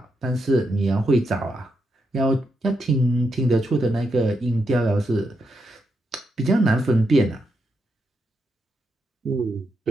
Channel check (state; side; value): normal; both; correlation 0.82